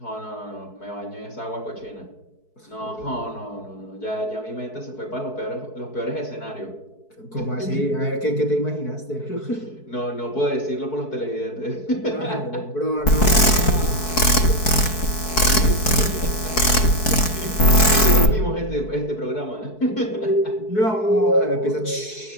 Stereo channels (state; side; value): late; right; 4.6 ms